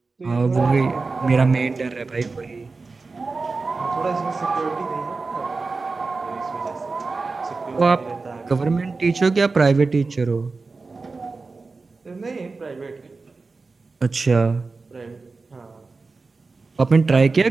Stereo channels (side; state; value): left; quieter; 4.0 dB